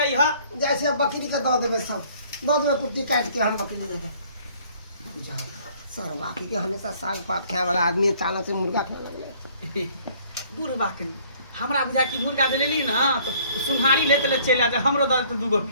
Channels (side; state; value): both; inverted; correlation -0.58